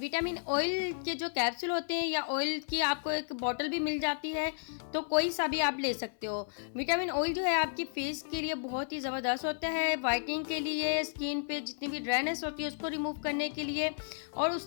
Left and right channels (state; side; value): silent; right; 56 dB below the other